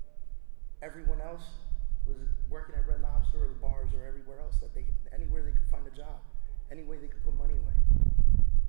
Everyone else was working at Red Lobster or the bars or everywhere else, anywhere they could find a job, any way they could put money away.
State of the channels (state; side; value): silent; left; 59 dB below the other